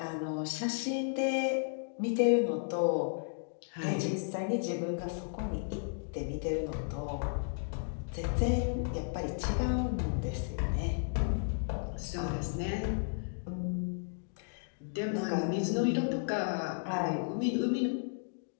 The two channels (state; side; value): silent; right; digital silence